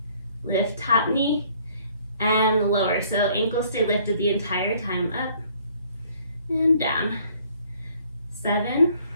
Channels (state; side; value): inverted; both; correlation -0.60